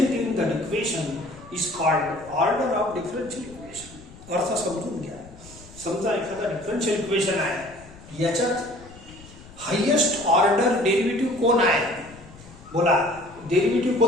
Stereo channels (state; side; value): noise; left; rumble, 20 dB below the sound